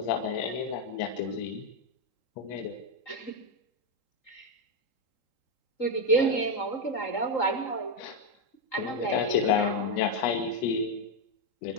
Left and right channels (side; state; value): right; late; 3.8 ms